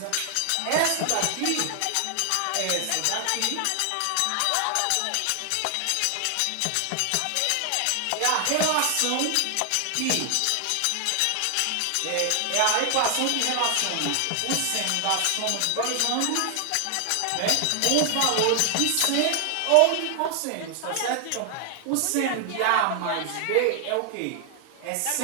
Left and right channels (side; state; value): both; different; correlation 0.00